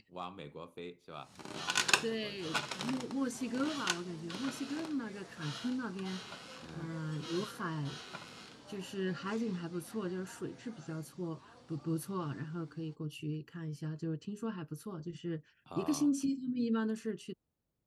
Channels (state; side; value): identical; both; correlation 1.00